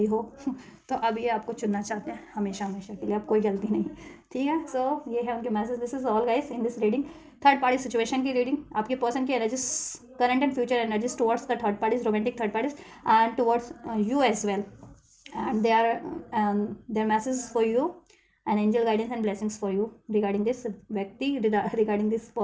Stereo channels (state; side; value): identical; both; correlation 1.00